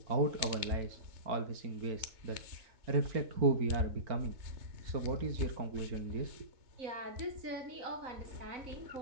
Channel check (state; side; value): late; left; 3.4 ms